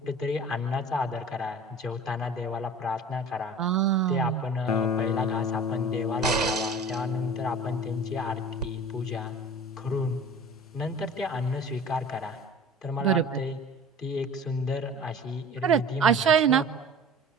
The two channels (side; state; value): both; normal; correlation 0.41